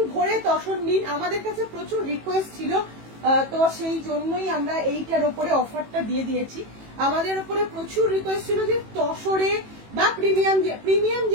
ভরে তসর নিন। আমাদের কাছে প্রচুর রিকোয়েস্ট ছিল, তো সেই জন্যই আমরা এইটার উপরে অফারটা দিয়ে দিয়েছি। আমাদের উপরে প্রচুর রিকোয়েস্ট ছিল যে তসরে বা প্রিমিয়াম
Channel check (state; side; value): late; left; 18 ms